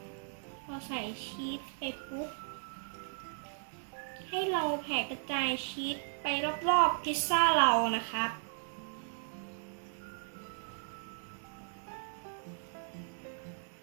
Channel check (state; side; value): silent; left; digital silence